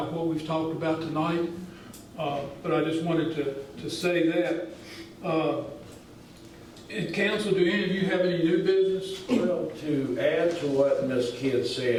what we've talked about tonight. But I just wanted to say that. In council, do any of you have any new business? Well, to add to what Ms. Kidd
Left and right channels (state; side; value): identical; both; correlation 1.00